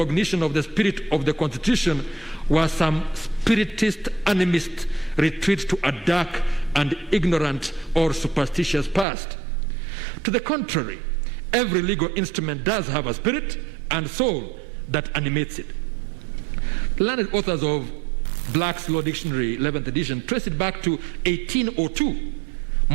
of the spirit of the Constitution was some spiritist, animist retreat to a dark and ignorant or superstitious past. To the contrary, every legal instrument does have a spirit and soul that animates it. The learned authors of Black's Law Dictionary, 11th edition, trace it back to 1802,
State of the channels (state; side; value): drops out; left; at 9.1 s